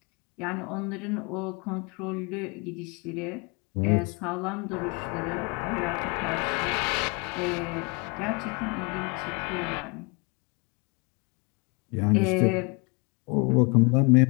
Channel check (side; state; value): right; quieter; 31.0 dB